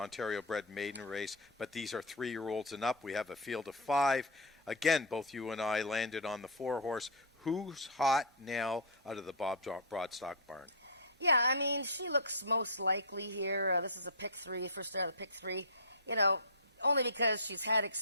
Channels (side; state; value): both; normal; correlation -0.07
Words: maiden race, but these are 3-year-olds and up. We have a field of 5. Again, both you and I landed on the 4-horse. Who's hot now out of the Bob Broadstock barn? Yeah, I mean, she looks most likely here. This is a pick 3, first start of the pick 3. Only because she's had